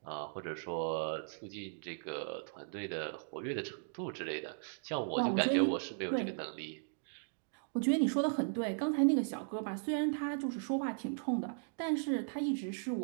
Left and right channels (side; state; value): left; silent; digital silence